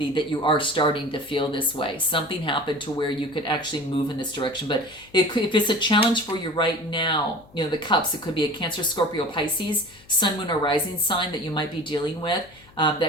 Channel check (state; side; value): noise; left; hum, 26 dB below the sound